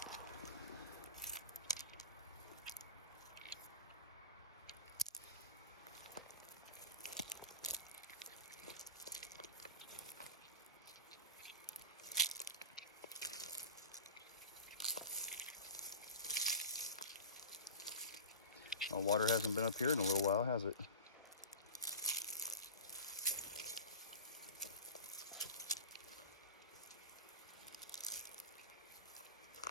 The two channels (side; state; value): both; inverted; correlation -0.31